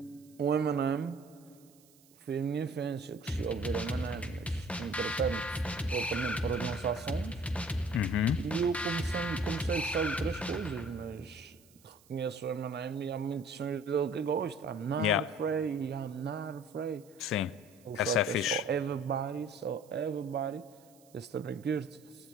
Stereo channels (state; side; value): noise; right; hiss, 28 dB below the sound